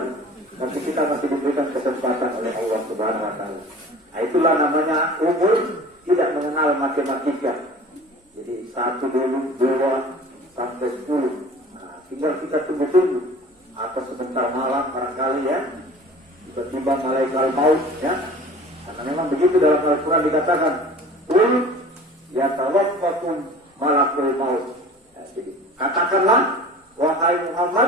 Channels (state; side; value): normal; both; correlation 0.42